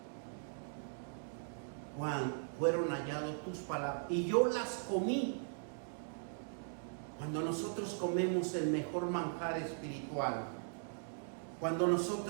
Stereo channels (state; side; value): silent; left; digital silence